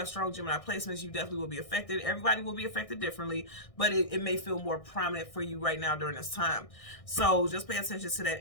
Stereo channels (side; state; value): right; late; 1.6 ms